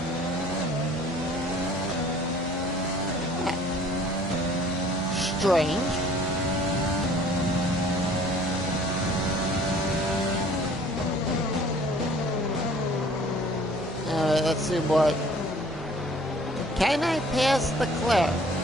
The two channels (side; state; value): both; normal; correlation 0.53